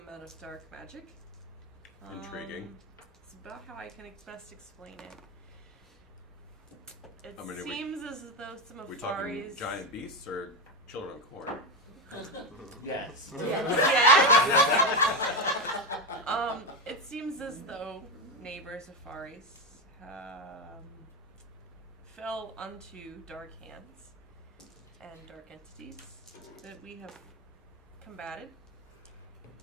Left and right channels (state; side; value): normal; both; correlation 0.13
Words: amount of dark magic. Intriguing. It's about how I can best explain it. It I mean, seems as though some of We talking Farih's giant beasts or children of corn? Yes. Yes. It seems as though neighbors of Farih's fell unto dark hands and dark entities that we have combated.